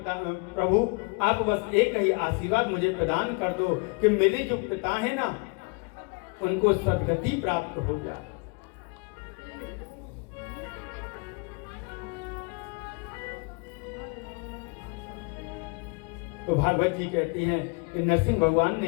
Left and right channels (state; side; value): quieter; right; 31.7 dB